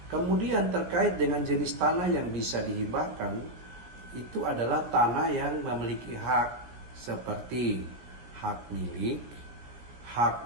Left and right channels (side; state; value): left; late; 16 ms